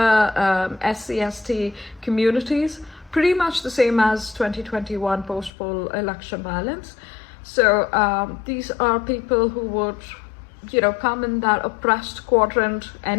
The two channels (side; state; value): right; drops out; at 5.5 s